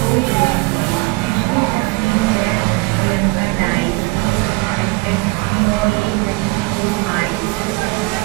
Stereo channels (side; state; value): left; quieter; 26.1 dB